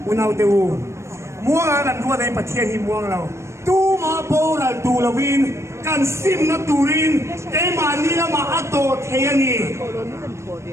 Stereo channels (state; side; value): late; left; 0.13 ms